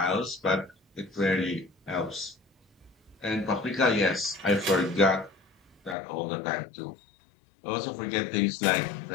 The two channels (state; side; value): drops out; right; at 6.0 s